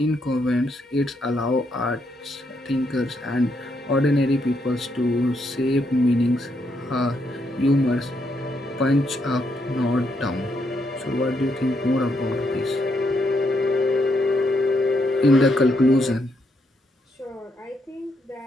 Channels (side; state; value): both; normal; correlation 0.77